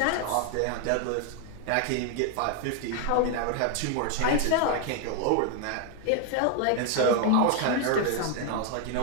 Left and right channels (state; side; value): different; both; correlation 0.00